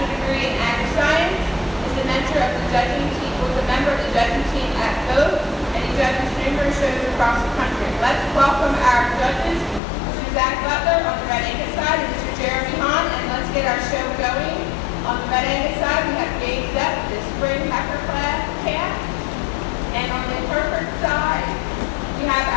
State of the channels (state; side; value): drops out; right; at 9.8 s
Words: degree in ag science, is a mentor of the judging team, was a member of the judging team at both, and he judges numerous shows across the country. Let's welcome our judges, Mr. Zach Butler on the Red Angus side, and Mr. Jeremy Hahn, and let's get our show going. On the Red Angus side, we have Gabe Zepp, the spring heifer calf, and on the Hereford side, we have